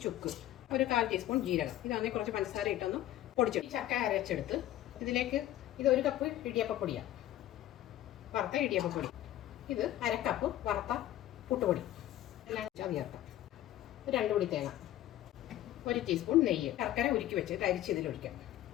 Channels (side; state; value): right; quieter; 13.4 dB